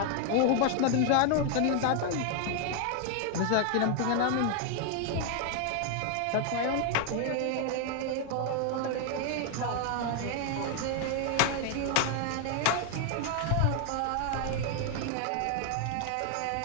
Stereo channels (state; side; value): different; both; correlation 0.00